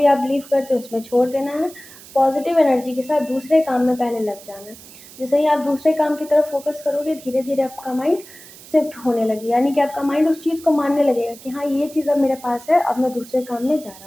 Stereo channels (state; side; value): noise; right; hiss, 19 dB below the sound